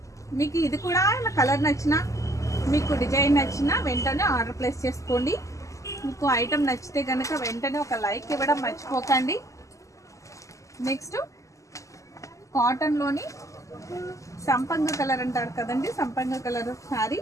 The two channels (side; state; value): right; late; 0.16 ms